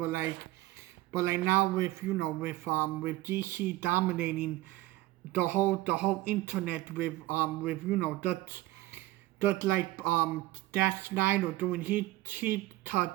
like now with with DC dominating the whole internet with that like that Snyder doing his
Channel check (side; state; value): left; quieter; 17.6 dB